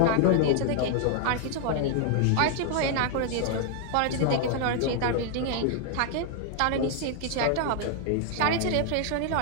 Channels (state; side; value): different; both; correlation 0.00